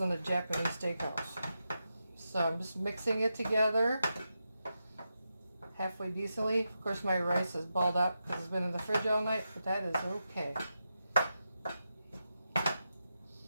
Japanese steakhouse. So I'm just mixing it together halfway decently. Of course my rice is balled up because it's been in the fridge all night, but that is okay.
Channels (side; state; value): both; inverted; correlation -0.88